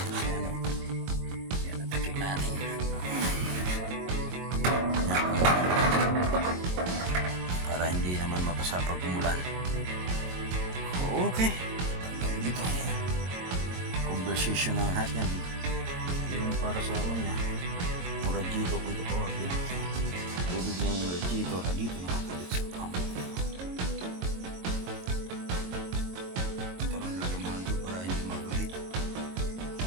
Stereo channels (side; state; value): left; late; 22 ms